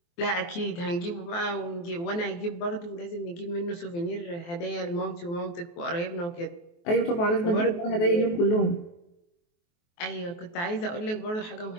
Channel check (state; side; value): late; right; 23 ms